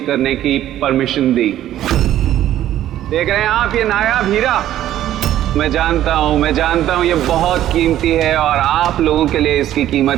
करने की परमिशन दी। देख रहे हैं आप ये नायाब हीरा? मैं जानता हूं ये बहुत कीमती है और आप लोगों के लिए इसकी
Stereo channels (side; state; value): left; quieter; 12.5 dB